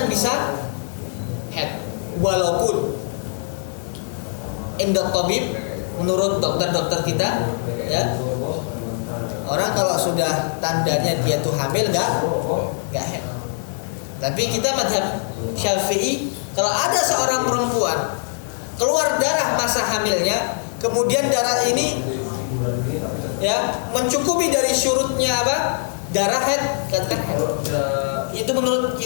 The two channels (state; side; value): silent; right; digital silence